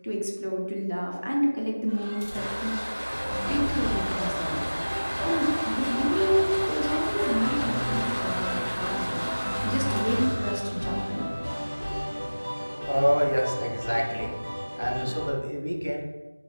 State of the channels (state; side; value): inverted; both; correlation -1.00